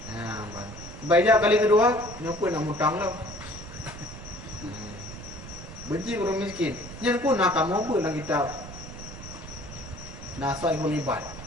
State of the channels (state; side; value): noise; right; rumble, 13 dB below the sound